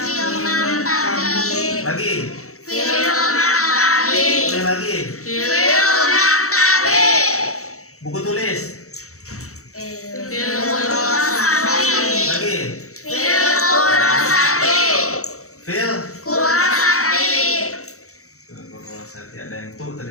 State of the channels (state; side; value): late; right; 0.64 ms